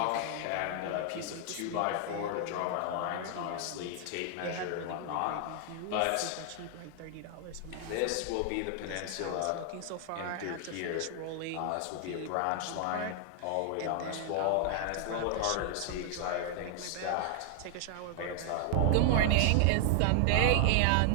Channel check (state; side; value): different; both; correlation 0.00